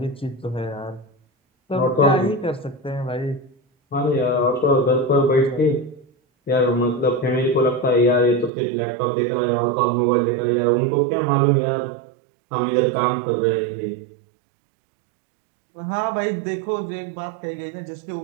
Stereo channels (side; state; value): left; drops out; at 8.5 s